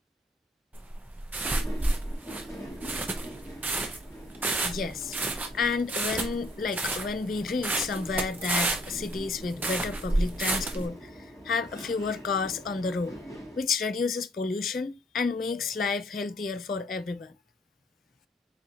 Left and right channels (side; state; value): both; normal; correlation 0.64